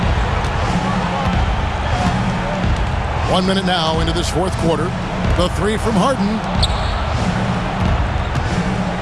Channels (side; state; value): both; identical; correlation 1.00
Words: 1 minute now into this fourth quarter. The three from Harden.